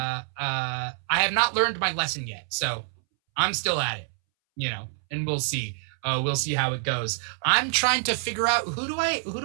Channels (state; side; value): silent; left; 61 dB below the other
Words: have not learned my lesson yet. So I'm still at it, and we'll see. We'll see how it goes. I'm trying to figure out who do